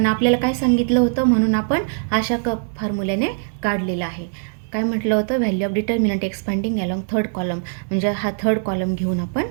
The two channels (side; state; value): left; silent; digital silence